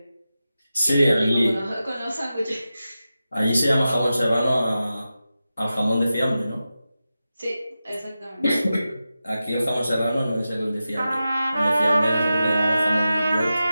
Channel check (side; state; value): both; inverted; correlation -0.92